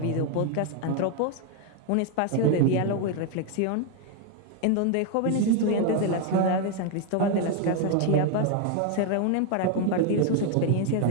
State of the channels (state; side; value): different; both; correlation 0.01